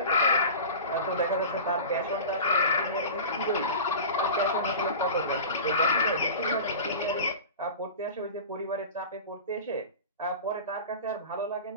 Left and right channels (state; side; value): inverted; both; correlation -0.34